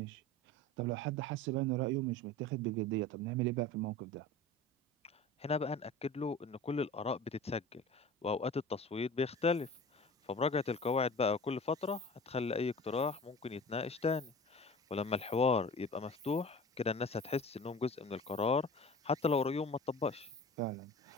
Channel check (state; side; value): normal; both; correlation 0.38